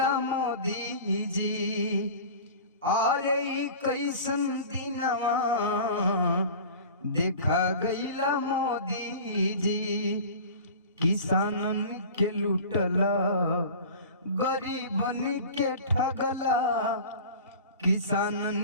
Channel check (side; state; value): both; inverted; correlation -0.38